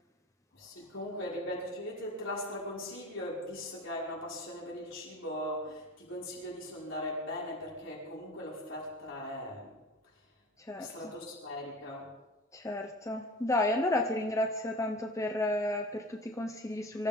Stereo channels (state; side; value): normal; both; correlation 0.37